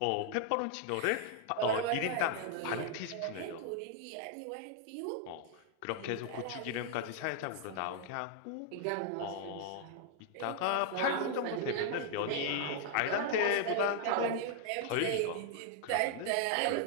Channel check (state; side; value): different; both; correlation 0.00